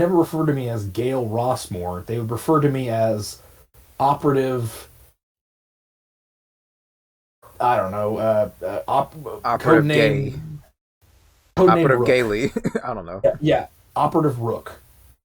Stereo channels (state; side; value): identical; both; correlation 1.00